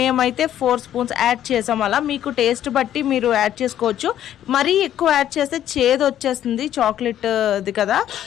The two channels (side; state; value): right; quieter; 11.3 dB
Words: 4 స్పూన్స్ యాడ్ చేసాం. అలా మీకు టేస్ట్ బట్టి మీరు యాడ్ చేసుకోవచ్చు. మరీ ఎక్కువ యాడ్ చేస్తే చేదు వచ్చేస్తుంది, చాక్లెట్ ఇది కదా,